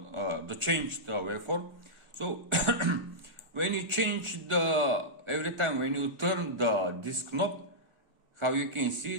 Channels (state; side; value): late; left; 1.3 ms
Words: So when you change every time when you turn this knob, how you can